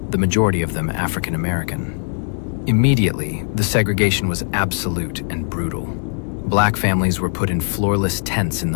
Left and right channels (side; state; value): right; silent; digital silence